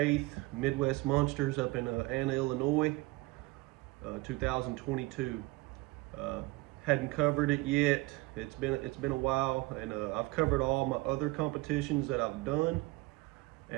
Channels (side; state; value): left; quieter; 22.2 dB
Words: Midwest Monsters up in Anna, Illinois, 2022. Hadn't covered it yet. It's been a while, and I've covered all my other competitions that I've done,